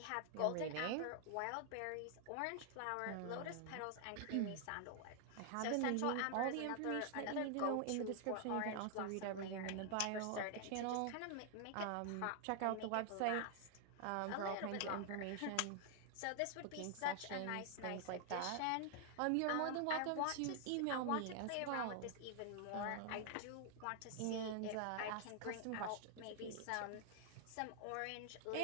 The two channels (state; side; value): different; both; correlation 0.00